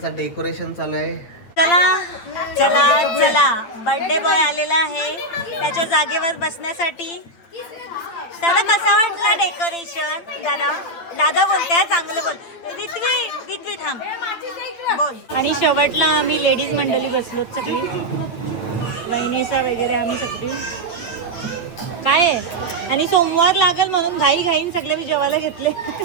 डेकोरेशन चालू आहे. चला चला चला, बर्थडे बॉय आलेला आहे त्याच्या जागेवर बसण्यासाठी. दादा कसा वाटला डेकोरेशन? दादा दादा बोलते चांगलं बोल. गीतवी थांब बोल. आणि शेवटला आम्ही लेडीज मंडळी बसलो सगळी, वहिनीसा वगैरे आम्ही सगळी. काय आहे, आणि सोमवार लागल म्हणून घाई घाईन सगळे मी जेवायला घेतले.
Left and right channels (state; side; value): late; right; 8.8 ms